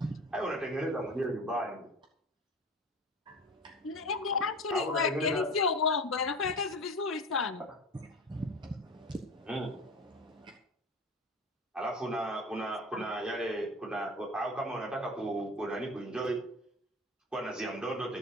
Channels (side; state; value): both; normal; correlation 0.32